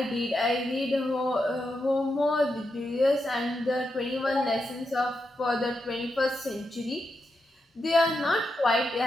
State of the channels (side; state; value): both; normal; correlation 0.85